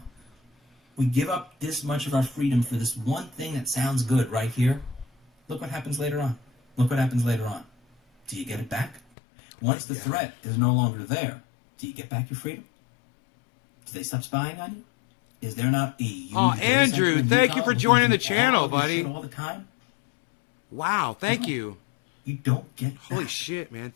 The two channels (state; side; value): drops out; right; at 9.0 s